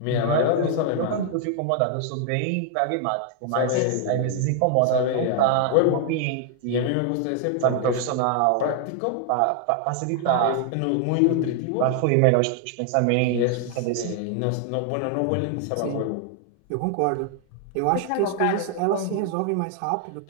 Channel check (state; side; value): different; both; correlation 0.00